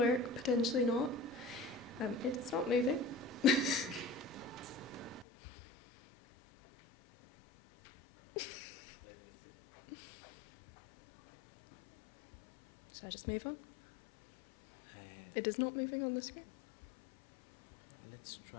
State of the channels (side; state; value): right; drops out; at 5.2 s